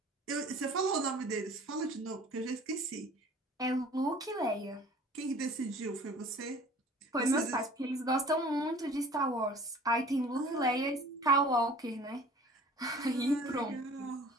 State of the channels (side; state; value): both; normal; correlation 0.47